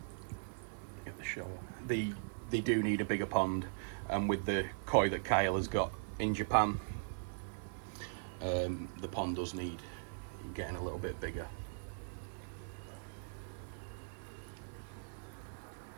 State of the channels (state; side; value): silent; left; 51 dB below the other